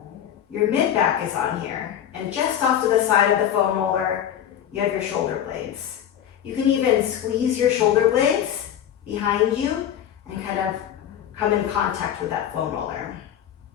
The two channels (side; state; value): right; quieter; 10.1 dB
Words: your mid-back is on here. And just off to the side of the foam roller, you have your shoulder blades. You can even squeeze your shoulder blades behind you and kind of come in contact with that foam roller.